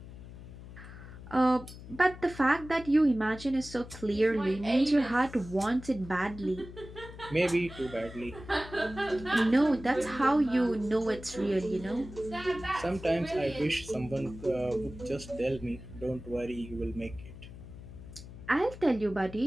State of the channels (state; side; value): noise; left; hum, 14 dB below the sound